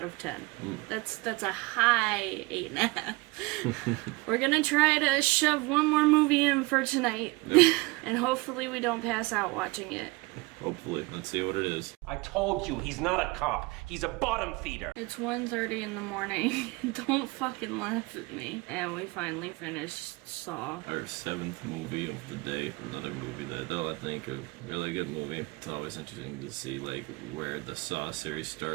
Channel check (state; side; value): quieter; left; 23.3 dB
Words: of 10. That's a high 8.5. We're gonna try to shove one more movie in for tonight. Yep. And hopefully we don't pass out watching it. Hopefully. Let's see what it is. I told you, he's not a cop. He's a bottom feeder. It's 1:30 in the morning. Don't fucking laugh at me. And we finally finished Saw. Our 7th movie of the day. Another movie that I think a really good movie. It's always interesting to see, like, where the Saw series